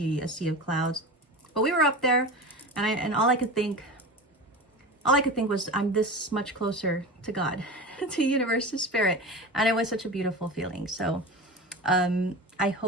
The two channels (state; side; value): normal; both; correlation 0.30